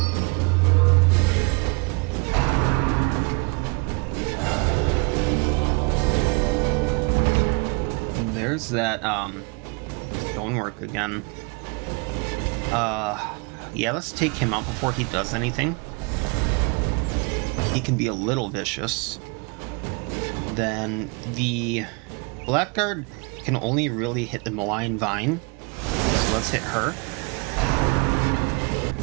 There's that stonework again. Yeah, let's take him out before he does anything. He can be a little vicious. Then the Blackguard can only really hit the malign vine. So let's hit her.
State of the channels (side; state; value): left; quieter; 31.5 dB